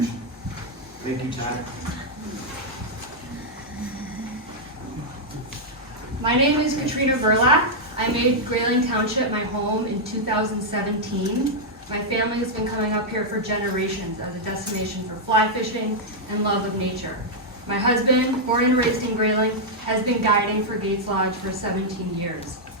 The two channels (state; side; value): normal; both; correlation -0.04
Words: Thank you, Todd. My name is Katrina Burlak. I made Grayling Township my home in 2017. My family has been coming up here for generations as a destination for fly fishing and love of nature. My husband, born and raised in Grayling, has been guiding for Gates Lodge for 17 years.